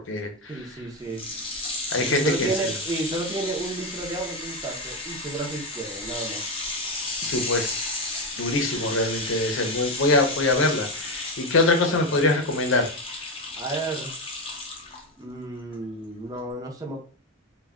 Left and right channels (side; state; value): both; normal; correlation 0.12